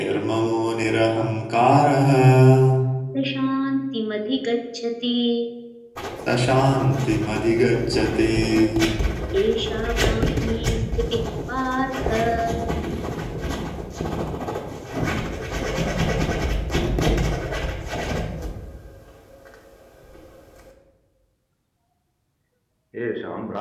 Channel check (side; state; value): both; identical; correlation 1.00